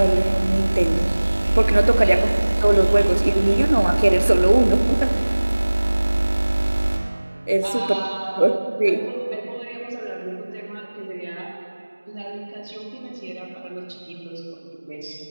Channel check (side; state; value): both; inverted; correlation -1.00